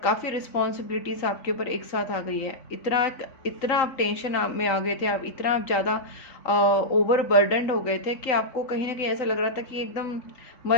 रिस्पॉन्सिबिलिटीज़ आपके ऊपर एक साथ आ गई है। इतना आप टेंशन में आ गए थे, आप इतना ज़्यादा ओवर बर्डनड हो गए थे कि आपको कहीं ना कहीं ऐसा लग रहा था कि एकदम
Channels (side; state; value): right; late; 3.8 ms